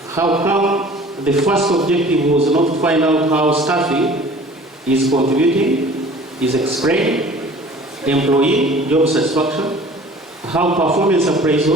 How come the first objective was not to find out how staffing is contributing, is explained, employee job satisfaction, how performance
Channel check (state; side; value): normal; both; correlation 0.47